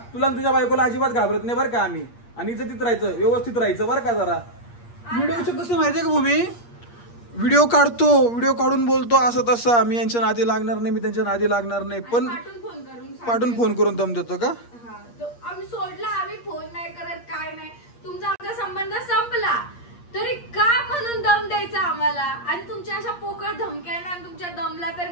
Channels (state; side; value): late; right; 8.5 ms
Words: तुझ्या बायकोला अजिबात घाबरत नाही बरं का आम्ही. आणि इज्जतीत राहायचं, व्यवस्थित राहायचं बरं का. जरा व्हिडिओचं कसं माहितीये का भूमी, व्हिडिओ काढतो, व्हिडिओ काढून बोलतो असं तसं, मी यांच्या नादी लागणार नाही, मी त्यांच्या नादी लागणार नाही. पण पाठून फोन करून दम देतो का? आम्ही सोडला, आम्ही फोन नाही करत, काय नाही. तुमचा आमचा संबंध संपला तरी का म्हणून दम द्यायचा आम्हाला. आणि तुमच्या अशा पोकळ धमक्याना आणि तुमच्या दमला तर